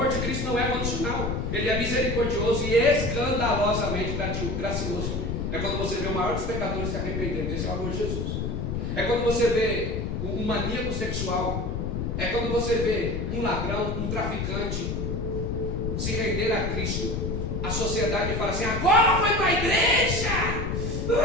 de Cristo não é condicional. Ele é misericordioso e escandalosamente gracioso. É quando você vê o maior dos pecadores se arrependendo. Esse é o amor de Jesus. É quando você vê um maníaco sexual. É quando você vê um ladrão, um traficante se render a Cristo. A sociedade fala assim: agora foi para a igreja.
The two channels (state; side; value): noise; left; rumble, 2 dB below the sound